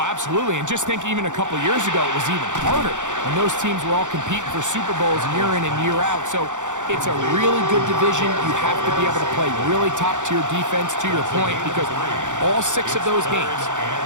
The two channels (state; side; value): late; left; 0.86 ms